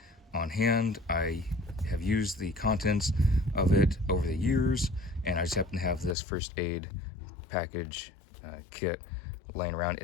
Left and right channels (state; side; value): drops out; right; at 6.2 s